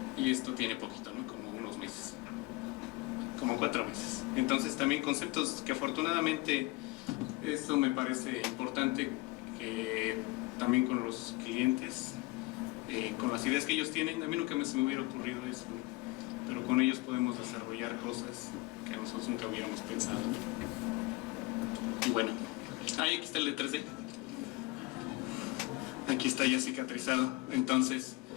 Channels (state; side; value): quieter; right; 22.0 dB